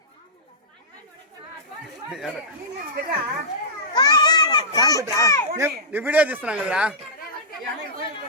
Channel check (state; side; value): normal; both; correlation -0.15